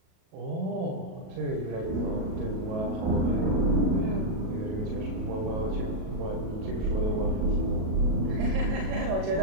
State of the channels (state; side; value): late; left; 37 ms